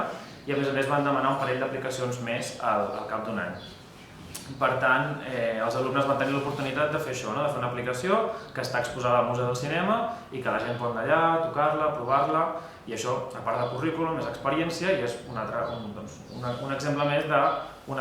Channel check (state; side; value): identical; both; correlation 1.00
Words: i a més van demanar un parell d'aplicacions més al cap d'un any. Per tant, els alumnes van tenir l'oportunitat de fer això, de fer una aplicació que està exposada al Museu del Cinema i que la gent pot anar allà, tocar-la, provar-la, i això, a part de currículum, és experiència i és un exemple més